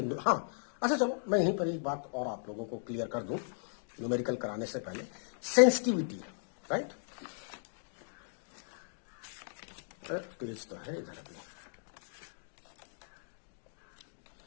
हाँ अच्छा चलो मैं यहीं पर एक बात और आप लोगों को क्लियर कर दूं न्यूमेरिकल कराने से पहले। सेंसिटिविटी, राइट, पेज तो है इधर अभी।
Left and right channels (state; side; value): silent; right; digital silence